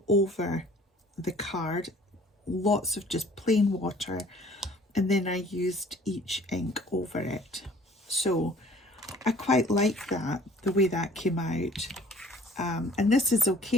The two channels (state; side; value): normal; both; correlation 0.53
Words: over the card, lots of just plain water, and then I used each ink over it. So I quite like that, the way that came out. And this is